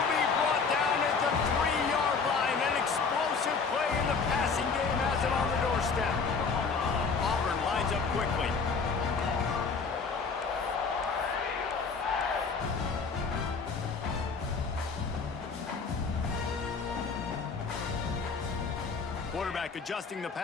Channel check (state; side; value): quieter; right; 5.0 dB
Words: be brought down at the 3-yard line. An explosive play in the passing game has it on the doorstep. Auburn lines up quickly. Quarterback adjusting the